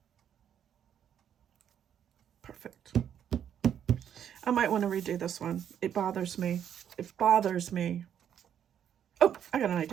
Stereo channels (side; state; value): left; quieter; 9.2 dB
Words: Perfect. I might want to redo this one. It bothers me. It bothers me. Oh, I got an